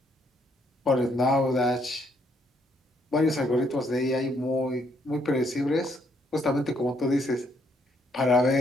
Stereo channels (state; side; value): normal; both; correlation 0.71